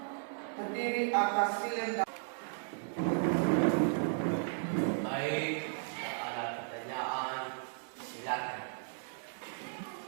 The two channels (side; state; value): left; silent; digital silence